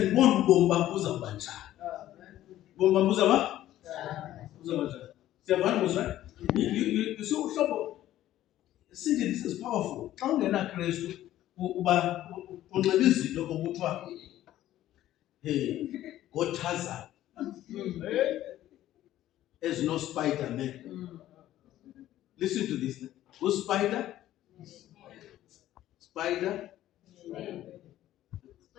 ubomi bakho uzawuba njani. Bomba muzaba? Muzaba. Right? You see, see, this is powerful. Xa ungena Kristu uba unxiba izinto okuthiwa hey ngoTharzan. There's no Spider-Man. Listen to this. Who's Spider? Spider?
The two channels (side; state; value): right; quieter; 13.5 dB